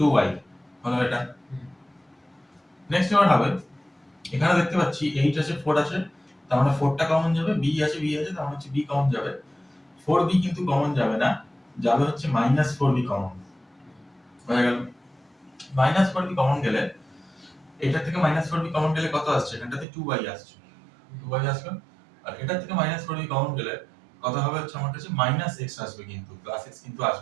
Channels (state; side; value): drops out; left; at 19.9 s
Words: হলো এটা। নেক্সট এবার হবে, এখানে দেখতে পাচ্ছি 8 আছে, 4 আছে, তার মানে 4টা কমন যাবে, b আছে, তার মানে হচ্ছে b কমন যাবে, 4b কিন্তু কমন যাবে না, যাবে হচ্ছে -4b কমন, হয়ে গেল। -4b কমন গেলে, এটা থেকে -4b কমন গেলে কত আসছে, এখানটাতে 2y আসছে, 2y আসলো, আর এটা থেকে -4b কমন গেলে কত হবে হচ্ছে আমার কাছে -x আসবে, কিন্তু +x কিন্তু